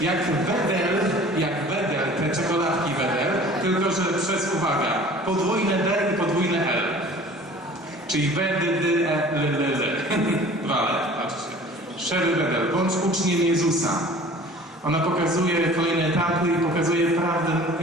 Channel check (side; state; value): both; normal; correlation 0.46